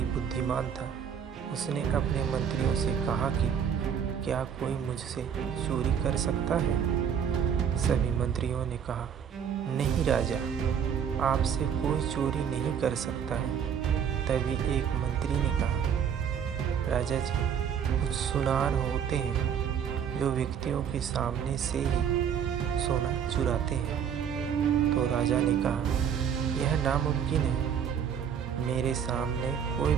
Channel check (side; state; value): left; quieter; 8.0 dB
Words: बुद्धिमान था। उसने अपने मंत्रियों से कहा कि क्या कोई मुझसे चोरी कर सकता है? सभी मंत्रियों ने कहा, नहीं राजा, आपसे कोई चोरी नहीं कर सकता है। तभी एक मंत्री ने कहा, राजा जी, कुछ सुनार होते हैं जो व्यक्तियों के सामने से ही सोना चुराते हैं। तो राजा ने कहा, यह नामुमकिन है। मेरे सामने कोई